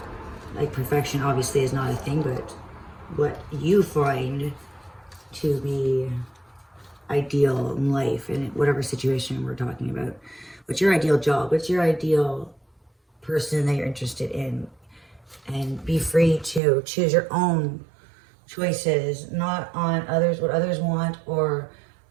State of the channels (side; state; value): left; drops out; at 16.6 s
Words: Like, perfection obviously is not a thing, but what you find to be ideal in life, in whatever situation we're talking about. What's your ideal job? What's your ideal person that you're interested in? And be free to choose your own choices, not on others, what others want, or